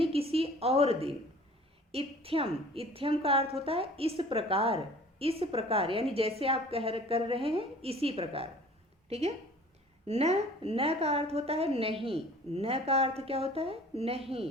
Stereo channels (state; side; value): normal; both; correlation 0.48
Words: किसी और दिन। इत्थ्यम। इत्थ्यम का अर्थ होता है इस प्रकार। इस प्रकार यानी जैसे आप कर रहे हैं इसी प्रकार, ठीक है। न। न का अर्थ होता है नहीं। न का अर्थ क्या होता है?